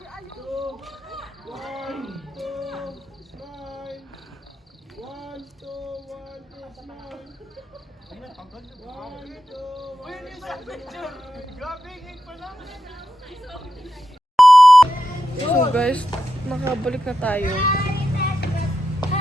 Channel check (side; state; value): both; normal; correlation 0.88